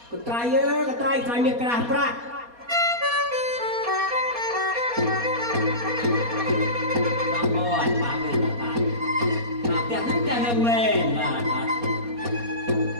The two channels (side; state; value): left; late; 4.2 ms